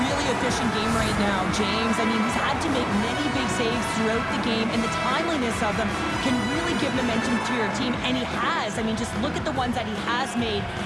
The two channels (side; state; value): both; identical; correlation 1.00